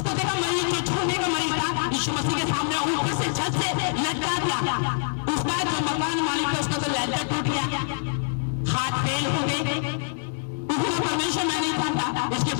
देखा मरीज जो छोड़ने का मरीज था यीशु मसीह के सामने ऊपर से छत से लटका दिया। उसका जो मकान मालिक था उसका तो लहजा टूट गया, हाथ फेल हो गए। परमेश्वर मैं नहीं चाहता इसके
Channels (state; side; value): silent; right; digital silence